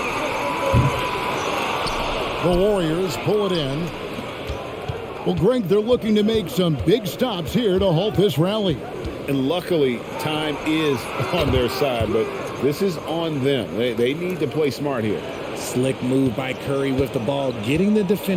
The Warriors pull it in. Well, Greg, they're looking to make some big stops here to halt this rally. And luckily, time is on their side, but this is on them. They need to play smart here. Slick move by Curry with the ball, getting the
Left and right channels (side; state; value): both; identical; correlation 1.00